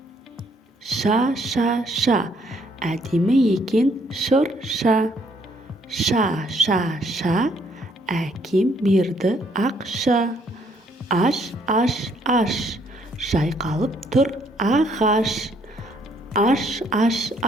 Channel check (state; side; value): normal; both; correlation 0.67